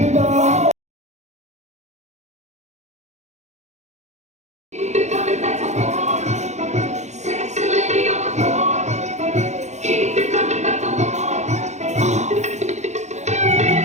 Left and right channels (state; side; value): late; left; 0.33 ms